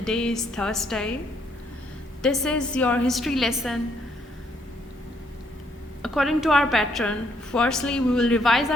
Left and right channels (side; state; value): both; normal; correlation 0.70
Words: is Thursday. This is your history lesson. According to our pattern, firstly we will revise